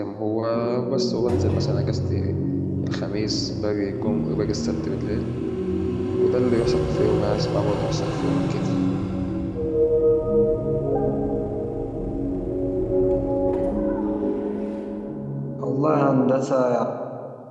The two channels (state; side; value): identical; both; correlation 1.00